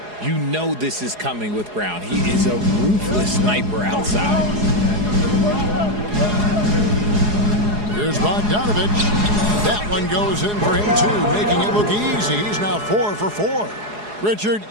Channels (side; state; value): left; late; 4.8 ms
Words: You know this is coming with Brown. He is a ruthless sniper outside. Here's Bogdanovich. That one goes in for him, too, making it look easy. He's now 4 for 4. Richard,